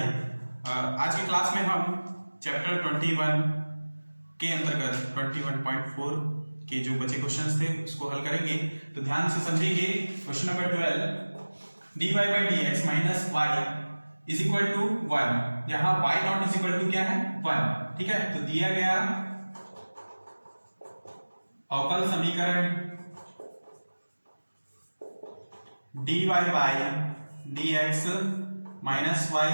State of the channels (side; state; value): both; inverted; correlation -1.00